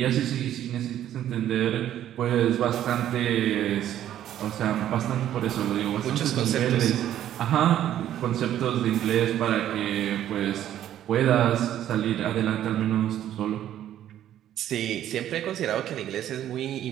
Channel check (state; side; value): quieter; left; 11.6 dB